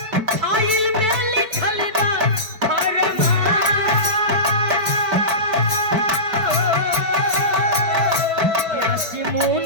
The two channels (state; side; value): late; left; 5.1 ms